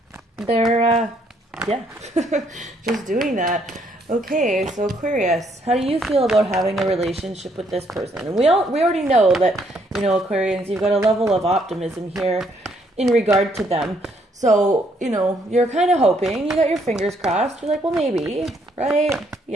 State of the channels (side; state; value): both; normal; correlation 0.70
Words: just doing that. Okay, so Aquarius, how do you feel about having a relationship with this person? And we already know that, Aquarians, you've got a level of optimism here in regard to them. So, you're kind of hoping, you got your fingers crossed. You're like, well, maybe, right?